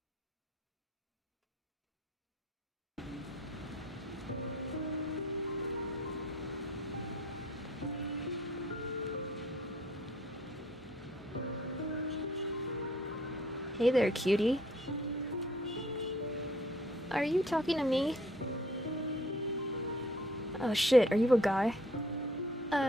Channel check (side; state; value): both; normal; correlation 0.58